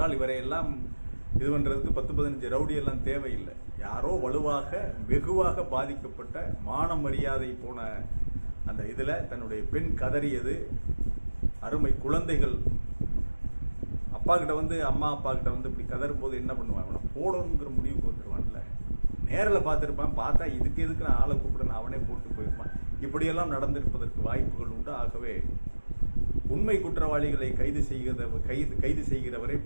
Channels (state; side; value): inverted; both; correlation -1.00